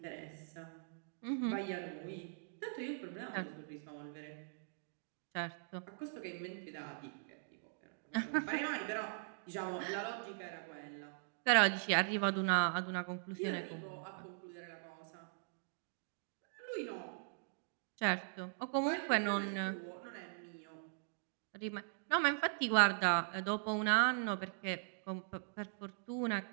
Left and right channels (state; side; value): silent; left; digital silence